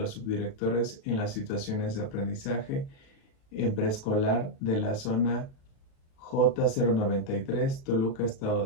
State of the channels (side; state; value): right; late; 36 ms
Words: subdirectores en las situaciones de aprendizaje en preescolar de la zona J093, Toluca, Estado